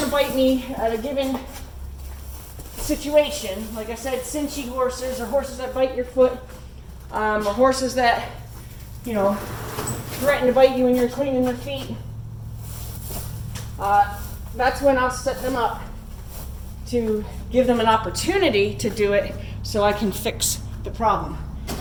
to bite me at a given situation. Like I said, cinchy horses, or horses that bite your foot, or horses that, you know, threaten to bite you when you're cleaning their feet. That's when I'll set them up to give them an opportunity to do it so I can fix the problem.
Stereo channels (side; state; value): both; identical; correlation 1.00